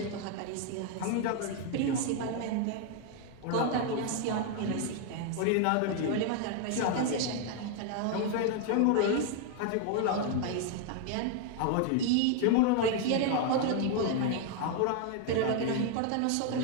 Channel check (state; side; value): different; both; correlation 0.00